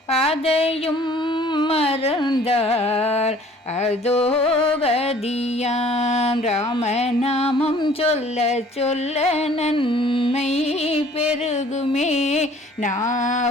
அதையும் மறந்தார் அதோ கதியாம். ராமநாமம் சொல்ல சொல்ல நன்மை பெருகுமே,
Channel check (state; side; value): normal; both; correlation 0.54